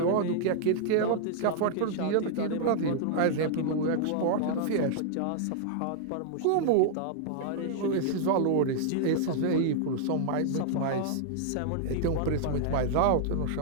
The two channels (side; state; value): both; different; correlation -0.01